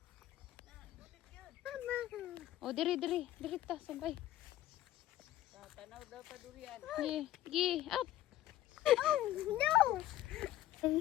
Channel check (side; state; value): right; quieter; 13.9 dB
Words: Mama. O, diri ta, sabay. Tanaw daw pa durian. Gi, up. Oh, no.